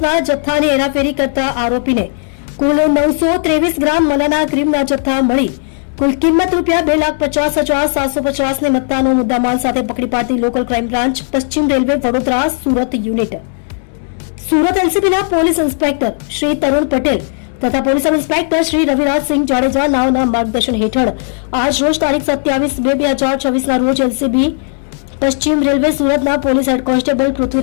જથ્થાની હેરાફેરી કરતા આરોપીને કુલ 923 ગ્રામ મલાના ક્રીમના જથ્થા મળી કુલ કિંમત ₹2,50,750 ની મત્તાનો મુદ્દામાલ સાથે પકડી પાડતી લોકલ ક્રાઇમ બ્રાન્ચ પશ્ચિમ રેલવે વડોદરા સુરત યુનિટ સુરત એલસીબીના પોલીસ ઇન્સ્પેક્ટર શ્રી તરુણ પટેલ તથા police sub inspector Shri Ravirajsinh Jadeja નાઓના માર્ગદર્શન હેઠળ આજ રોજ તારીખ 27/2/2026 રોજ એલસીબી પશ્ચિમ રેલવે સુરતના police head constable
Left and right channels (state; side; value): silent; right; digital silence